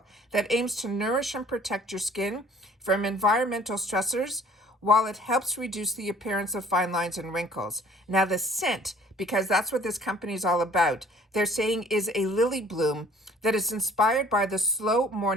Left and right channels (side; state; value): both; normal; correlation 0.54